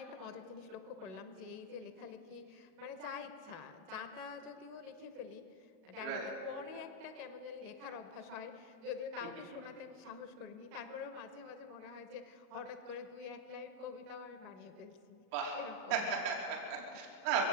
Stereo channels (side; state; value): left; late; 37 ms